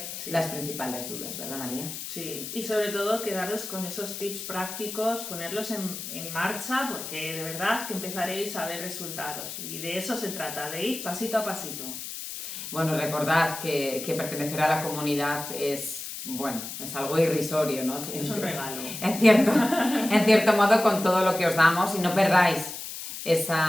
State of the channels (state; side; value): noise; left; hiss, 8 dB below the sound